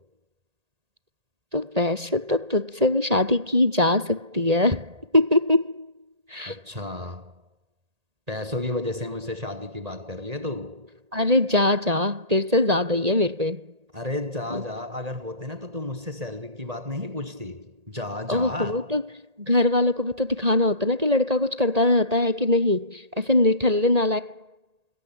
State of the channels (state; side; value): late; left; 1.8 ms